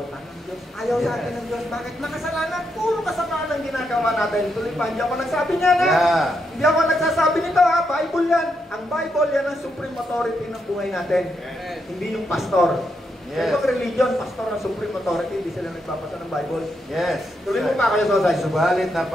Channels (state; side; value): normal; both; correlation 0.81